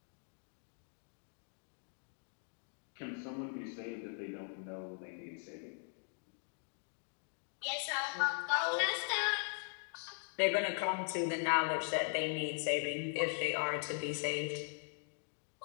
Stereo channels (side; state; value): right; silent; 51 dB below the other